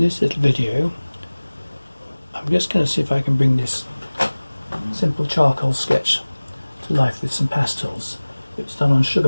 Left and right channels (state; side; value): inverted; both; correlation -1.00